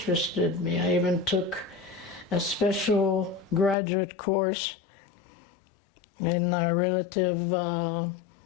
me. I even took a special graduate course in relative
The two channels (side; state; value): right; drops out; at 3.8 s